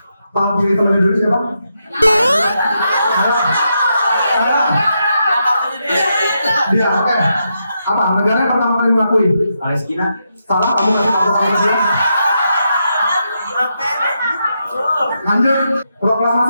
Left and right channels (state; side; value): inverted; both; correlation -0.83